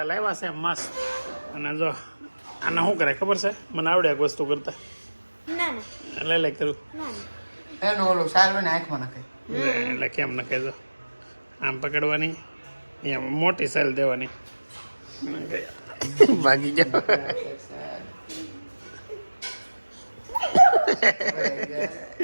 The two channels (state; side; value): inverted; both; correlation -1.00